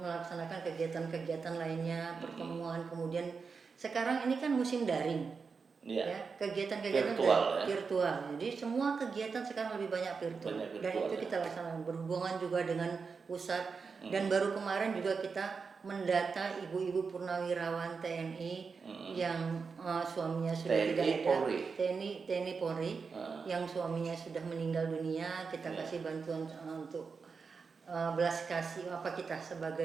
kegiatan-kegiatan lainnya, pertemuan. Kemudian sekarang ini kan musim daring. Ya, kegiatan-kegiatan virtual. Jadi semua kegiatan sekarang lebih banyak virtual. Dan itu kita laksanakan berhubungan juga dengan pusat. Dan baru kemarin juga kita mendata ibu-ibu purnawirawan TNI yang suaminya sudah TNI tidak ada, Polri. TNI Polri yang suaminya sudah meninggal dunia, kita kasih bantuan untuk belas kasih apa kita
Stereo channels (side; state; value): left; quieter; 5.1 dB